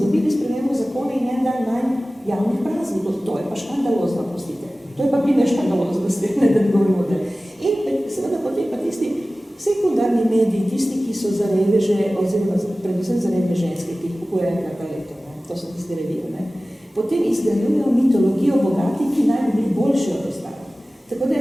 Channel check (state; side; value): normal; both; correlation 0.97